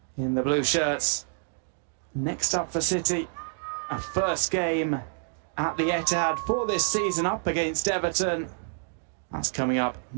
in the blue shirts. Next up for City, a first game at the Etihad for this season up against Everton. That's coming up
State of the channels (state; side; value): silent; left; digital silence